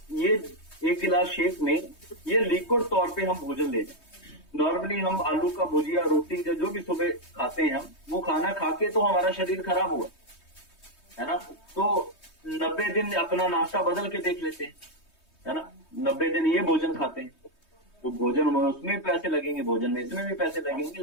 1 गिलास शेक में ये लिक्विड तौर पे हम भोजन ले जाए। नॉर्मली हम आलू का भुजिया, रोटी जो भी सुबह खाते हैं हम, वो खाना खा के तो हमारा शरीर खराब हुआ, है ना। तो 90 दिन अपना नाश्ता बदल के देख लेते हैं, है ना। 90 दिन ये भोजन खाते हैं, तो भोजन में उसमें पैसे लगेंगे, भोजन में इसमें भी पैसे लगेंगे,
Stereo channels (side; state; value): right; late; 3.2 ms